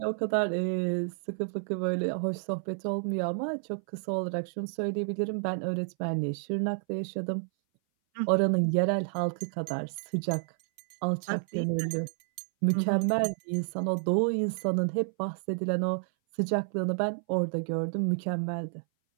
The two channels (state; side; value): silent; left; 58 dB below the other